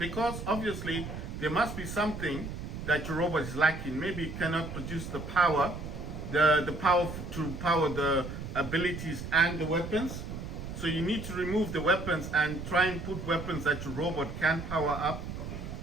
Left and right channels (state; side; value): noise; right; rumble, 8 dB below the sound